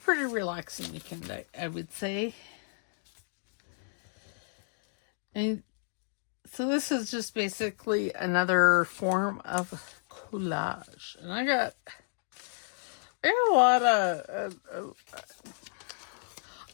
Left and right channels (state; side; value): silent; right; digital silence